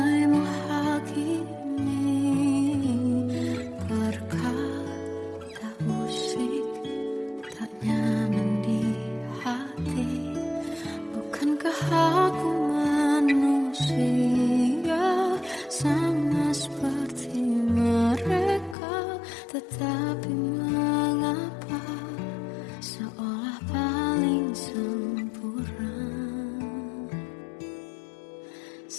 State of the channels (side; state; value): right; drops out; at 18.8 s